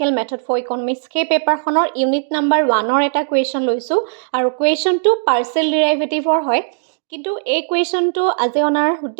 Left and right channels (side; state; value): left; silent; digital silence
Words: মেথড ফৰ ইকনমিক্স সেই পেপাৰখনৰ ইউনিট নাম্বাৰ 1ৰ এটা কুৱেশ্যন লৈছোঁ আৰু কুৱেশ্যনটো পাৰ্চিয়েল ডিৰাইভেটিভৰ হয়। কিন্তু এই কুৱেশ্যনটো আজি অনাৰ